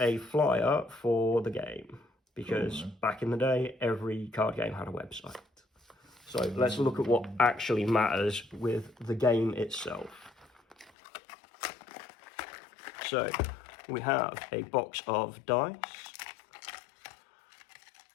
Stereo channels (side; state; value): right; drops out; at 10.9 s